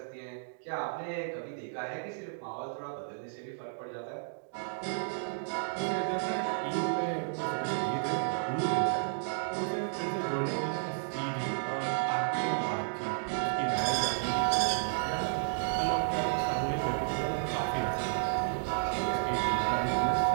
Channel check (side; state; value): left; silent; digital silence